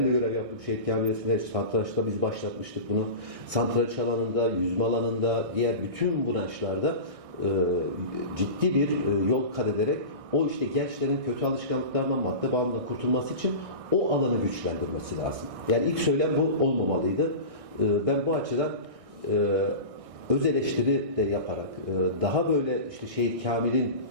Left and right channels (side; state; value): left; late; 1.6 ms